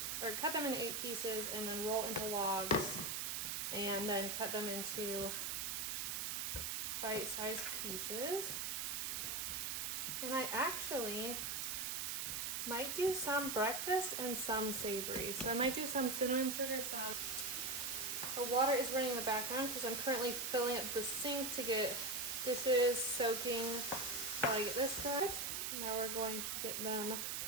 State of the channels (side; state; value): right; noise; hiss, 1 dB below the sound